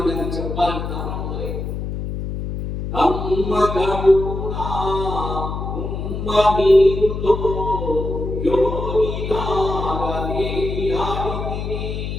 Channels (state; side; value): noise; left; hum, 5 dB below the sound